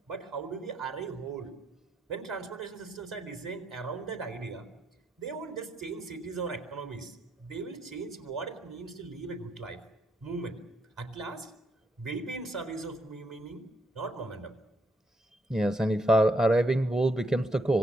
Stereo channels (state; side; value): normal; both; correlation 0.76